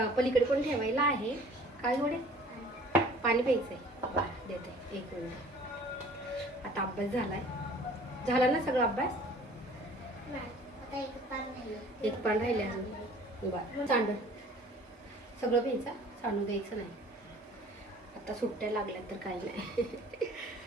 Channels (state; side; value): normal; both; correlation 0.50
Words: पलीकडे पण ठेवायला आहे. काय थोडे पाणी प्यायचं आहे, देते 1 मिनिट. आता अभ्यास झाला ना सगळा अभ्यास? एक पान राहिले अजून. बरं, सांड सगळं प्यायचं, सांडू द्यायचं नाही. आता सुट्ट्या लागल्या तर काही नाही.